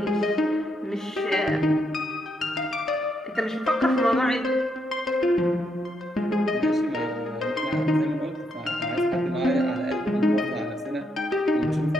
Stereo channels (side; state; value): both; normal; correlation 0.79